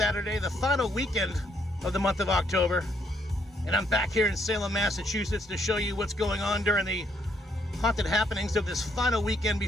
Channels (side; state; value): both; normal; correlation 0.72